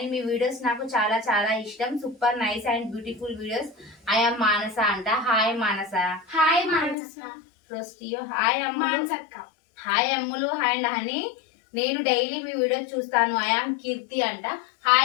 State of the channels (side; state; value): right; drops out; at 7.0 s